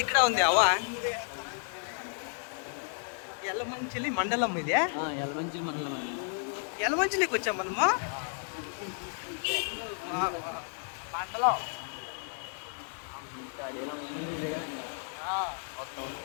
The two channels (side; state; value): right; silent; 56 dB below the other